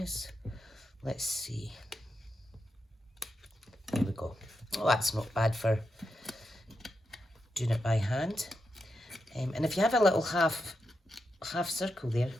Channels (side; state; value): both; normal; correlation 0.86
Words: Let's see. There we go. Oh, that's not bad for doing it by hand. And if you have a little half circle there,